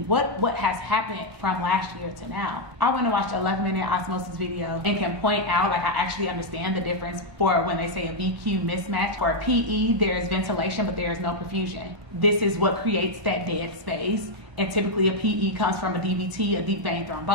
has happened from last year to now? I went and watched an 11-minute osmosis video and can point out, like, I actually understand the difference for when they say a VQ mismatch. For a PE, there's ventilation, but there is no perfusion. This is what creates that dead space. And typically a PE comes from a DVT, a deep vein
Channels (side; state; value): left; late; 1.4 ms